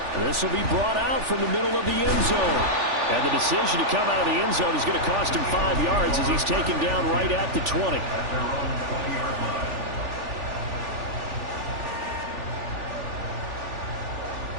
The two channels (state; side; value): late; left; 3.4 ms